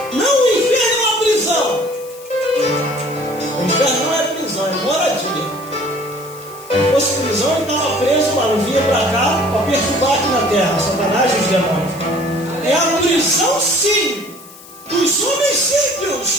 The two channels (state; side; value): noise; left; hiss, 20 dB below the sound